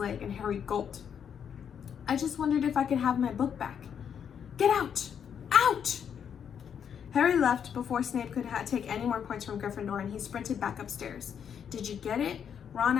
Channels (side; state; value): right; quieter; 7.9 dB